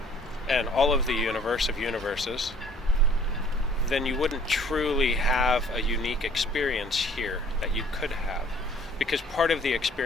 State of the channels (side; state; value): both; normal; correlation 0.55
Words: and all of the universe of universes, then you wouldn't truly have a unique experience here that you could have. Because part of the